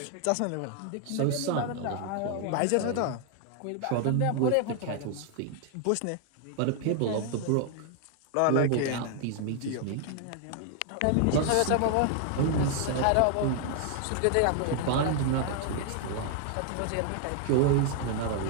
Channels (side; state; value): both; different; correlation 0.00